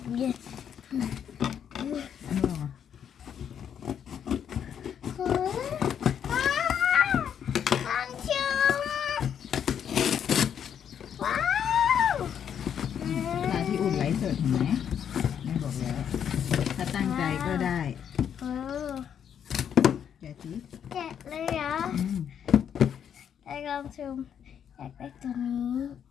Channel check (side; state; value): right; quieter; 8.6 dB